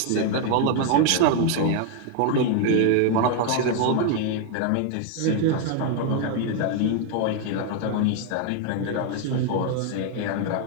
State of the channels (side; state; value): both; different; correlation 0.00